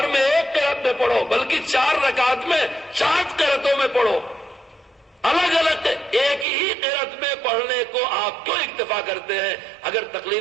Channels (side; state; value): left; drops out; at 6.5 s